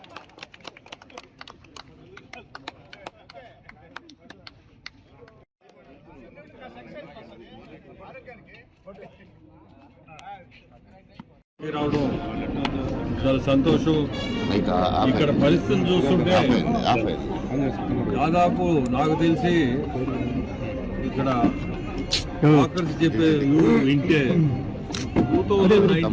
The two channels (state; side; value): identical; both; correlation 1.00